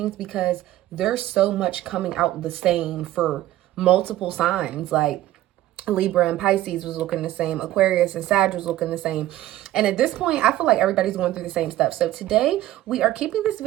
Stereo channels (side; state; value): left; quieter; 14.5 dB